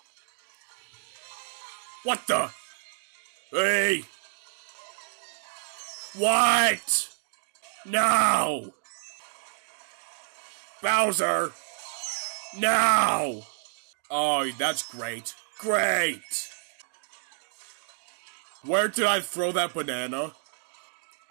What the? Hey! What? No! Bowser! No! Oh, that's great. Great! Where did I throw that banana?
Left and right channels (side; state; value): left; silent; 58 dB below the other